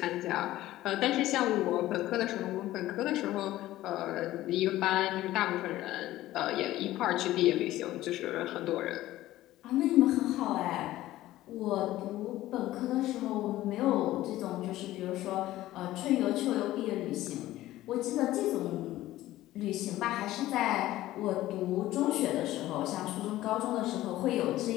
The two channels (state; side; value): quieter; right; 15.5 dB